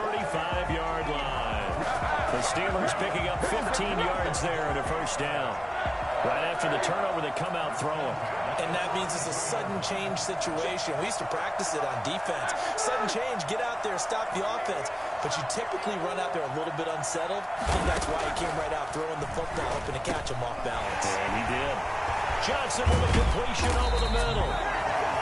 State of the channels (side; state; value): both; identical; correlation 1.00